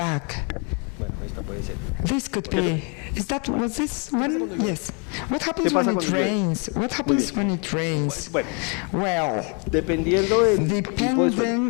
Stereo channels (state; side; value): quieter; right; 35.9 dB